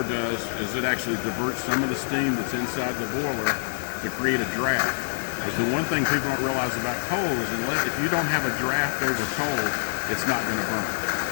does is it actually diverts some of the steam that's inside the boiler to create a draft. Because the one thing people don't realize about coal is if you don't have a draft over coal, it's not going to burn.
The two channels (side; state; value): right; silent; 61 dB below the other